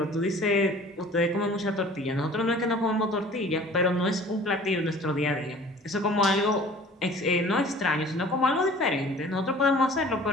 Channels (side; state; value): both; normal; correlation 0.47